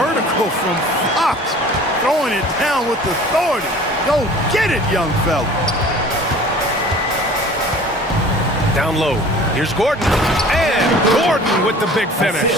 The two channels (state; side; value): normal; both; correlation 0.45